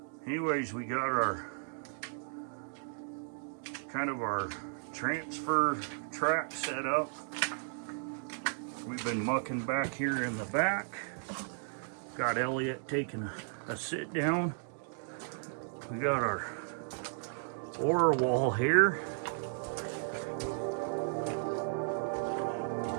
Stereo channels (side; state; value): left; silent; digital silence